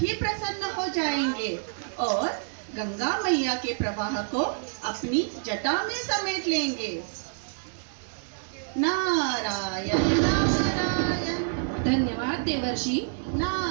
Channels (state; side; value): silent; left; digital silence